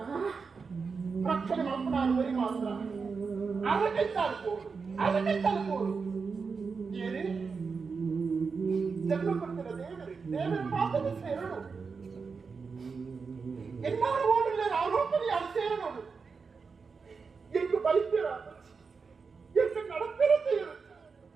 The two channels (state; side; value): quieter; left; 5.1 dB